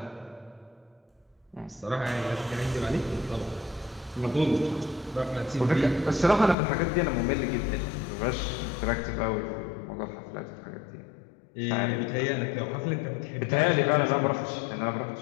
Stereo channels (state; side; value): drops out; right; at 6.6 s